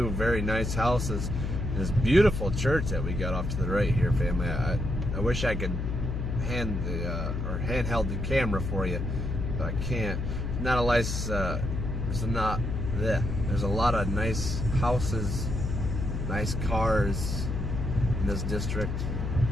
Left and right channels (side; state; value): left; noise; hum, 2 dB below the sound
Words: very nice houses. And this beautiful church that we got off to the right here, family. I wish I could handheld the camera for you, but I can't. Not a nice. There's a lot of nice houses, nice cars in this district.